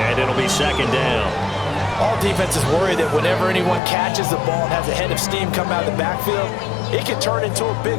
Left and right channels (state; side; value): drops out; right; at 3.8 s